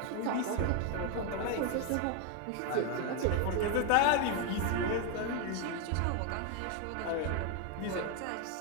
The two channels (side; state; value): both; different; correlation 0.01